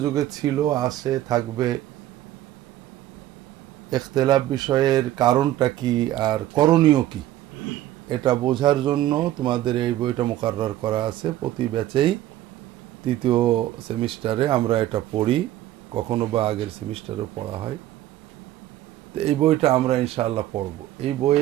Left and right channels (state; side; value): quieter; left; 13.8 dB